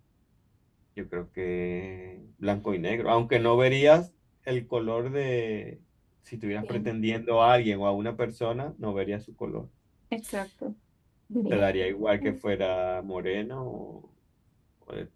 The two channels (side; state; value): both; identical; correlation 1.00